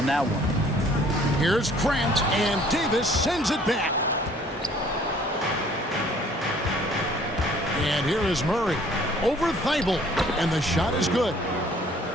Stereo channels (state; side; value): normal; both; correlation 0.56